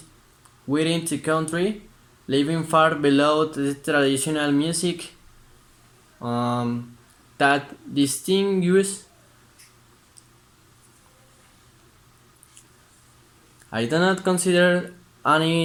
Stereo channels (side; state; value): both; identical; correlation 1.00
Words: within the country, leaving far below the traditional music that distinguishes. I do not consider